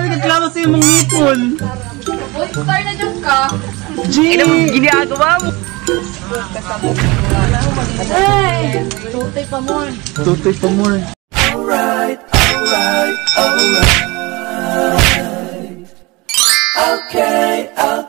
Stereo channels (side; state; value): left; quieter; 23.9 dB